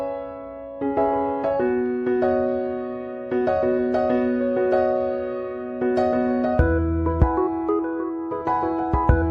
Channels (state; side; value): identical; both; correlation 1.00